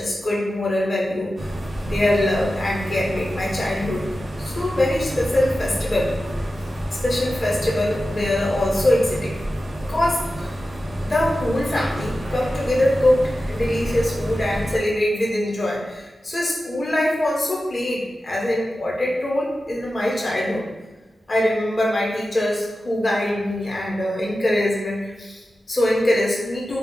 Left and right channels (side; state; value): both; normal; correlation 0.93